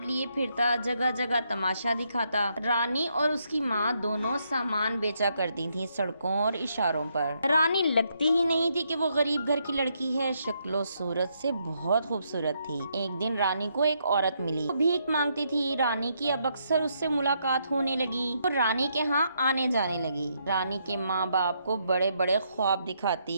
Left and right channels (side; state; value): both; inverted; correlation -0.76